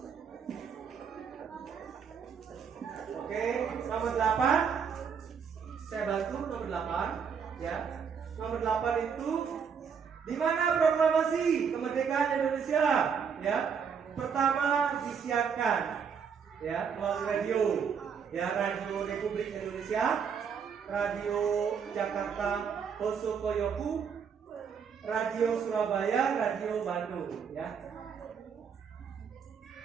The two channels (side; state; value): left; quieter; 6.7 dB